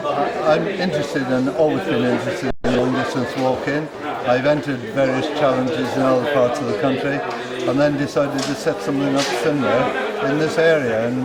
I'm always been interested in long distance walking. I've entered various challenges in other parts of the country and then decided to set something up similar in this area,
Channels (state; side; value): identical; both; correlation 1.00